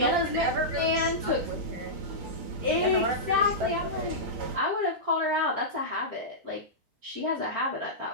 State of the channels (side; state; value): left; late; 7.6 ms